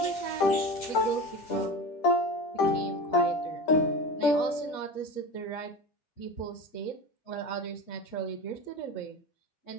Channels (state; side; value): late; right; 10 ms